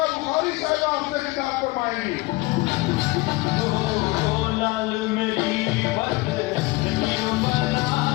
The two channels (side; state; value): right; quieter; 22.2 dB